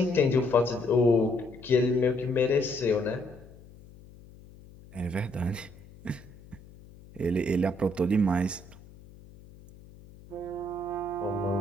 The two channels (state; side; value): noise; left; hum, 21 dB below the sound